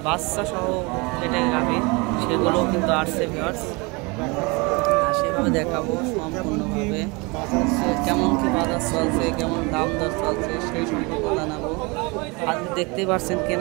বাচ্চা সহ যেটা গাভী সেগুলোও কিন্তু আসছে ভিউয়ার্স। সেভাবে দেখাবো সম্পূর্ণভাবে কেমন কি বাজার চলছে, কেমন দাম দর চলছে সেই সম্পর্কে জানাবো। আজকে দেখতেই পাচ্ছেন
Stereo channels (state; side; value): quieter; left; 27.7 dB